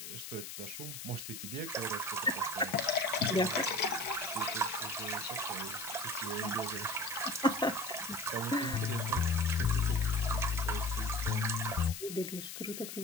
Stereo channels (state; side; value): noise; left; hiss, 9 dB below the sound